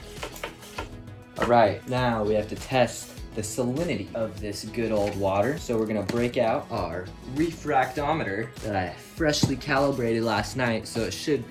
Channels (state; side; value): identical; both; correlation 1.00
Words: All right, now we have to test the salinity of this good old water. So we're gonna break out our refractometer that I freshly calibrated last night, so it should